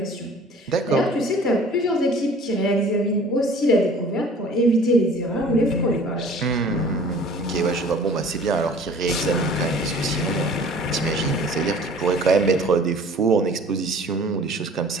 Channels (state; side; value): normal; both; correlation 0.48